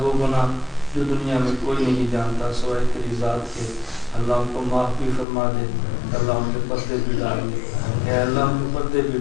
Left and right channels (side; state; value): right; drops out; at 5.2 s